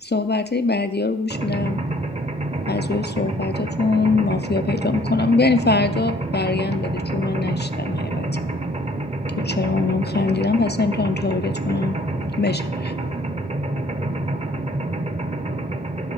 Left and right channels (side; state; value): both; normal; correlation 0.60